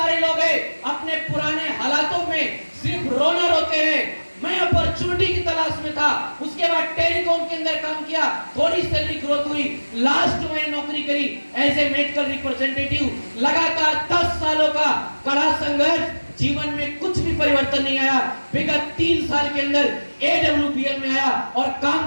लोग हैं अपने पुराने हालातों में सिर्फ रोना रोते हैं। मैं अपॉर्चुनिटी की तलाश में था, उसके बाद टेलीकॉम के अंदर काम किया, थोड़ी सैलरी ग्रोथ हुई, लास्ट में नौकरी करी एज ए मेडिकल रिप्रेजेंटेटिव। लगातार 10 सालों का कड़ा संघर्ष, जीवन में कुछ भी परिवर्तन नहीं आया। विगत 3 साल के अंदर एडब्ल्यूपीएल में आया और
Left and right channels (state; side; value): inverted; both; correlation -1.00